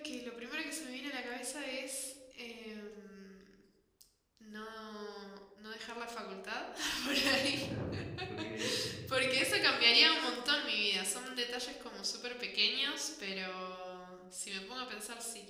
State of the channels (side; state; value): both; identical; correlation 1.00